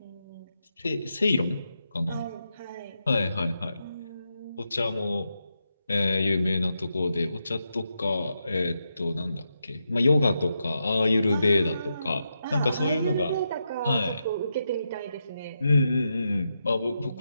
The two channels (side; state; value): both; inverted; correlation -0.85